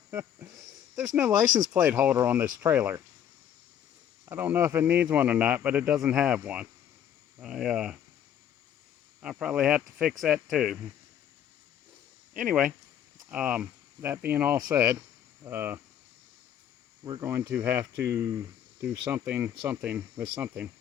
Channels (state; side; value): quieter; right; 9.7 dB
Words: There's no license plate holder on this trailer. I don't know if it needs one or not, but it doesn't have one. I'll probably have to fix that too. Anyway, that being all said, we're going to have to do something with something.